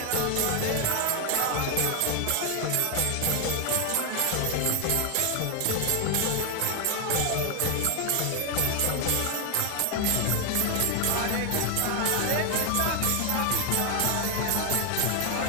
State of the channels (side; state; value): both; different; correlation 0.00